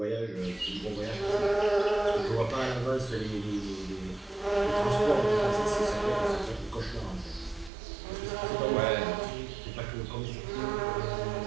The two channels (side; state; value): left; drops out; at 7.7 s